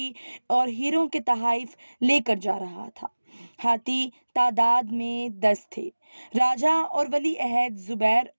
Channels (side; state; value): both; inverted; correlation -1.00